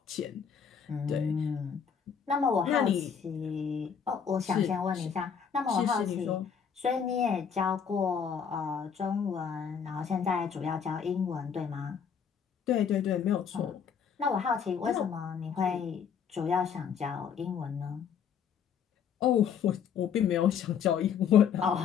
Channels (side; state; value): right; quieter; 7.2 dB